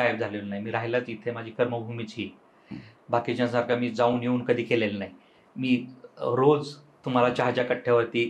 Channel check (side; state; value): both; identical; correlation 1.00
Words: झालेलो नाही. मी राहिलाच इथे, माझी कर्मभूमीच ही. बाकीच्यांसारखं मी जाऊन येऊन कधी केलेलं नाही. मी रोज तुम्हाला चहाच्या कट्ट्यावरती